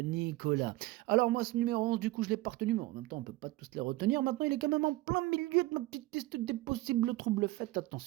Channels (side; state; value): left; quieter; 18.7 dB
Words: Nicolas. Alors, moi, ce numéro 11, du coup, je l'ai pas retenu, mais en même temps, on peut pas tous les retenir. Maintenant, il est quand même en plein milieu de ma petite liste des possibles troubles. Faites